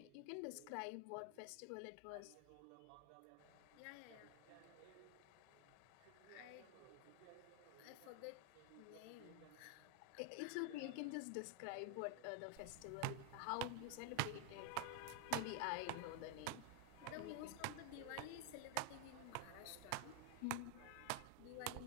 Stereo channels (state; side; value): different; both; correlation 0.00